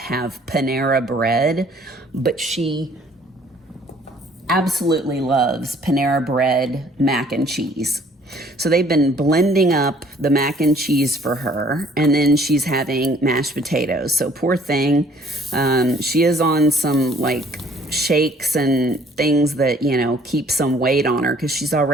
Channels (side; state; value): both; normal; correlation 0.58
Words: Panera bread, but she absolutely loves Panera bread mac and cheese. So they've been blending up the mac and cheese for her, and then she's having mashed potatoes. So poor thing, she is on some like shakes and things that, you know, keep some weight on her because she's